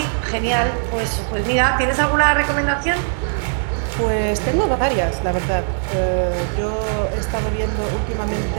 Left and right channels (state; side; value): silent; left; digital silence